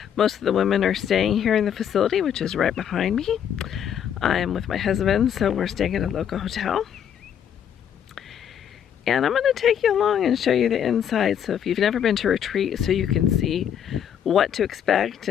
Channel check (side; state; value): right; quieter; 8.9 dB